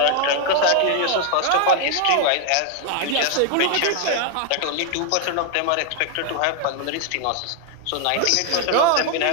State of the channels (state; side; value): different; both; correlation 0.00